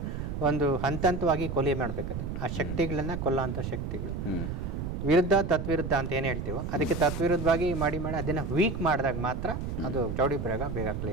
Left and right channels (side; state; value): right; noise; rumble, 4 dB below the sound